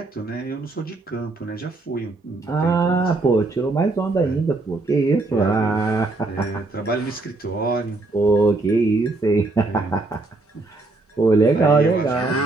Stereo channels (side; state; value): left; quieter; 3.2 dB